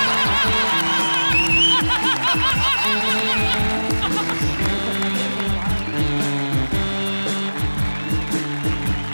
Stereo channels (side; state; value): both; inverted; correlation -1.00